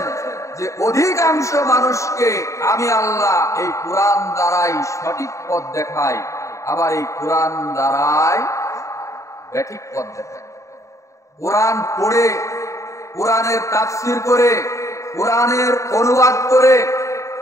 যে অধিকাংশ মানুষকে আমি আল্লাহ এই কোরআন দ্বারাই সঠিক পথ দেখাই, আবার এই কোরআন দ্বারাই ব্যাঠিক পথ দেখাই। কোরআন পড়ে, কোরআনের তাফসীর করে, কোরআনের অনুবাদ করে,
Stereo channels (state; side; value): late; right; 0.15 ms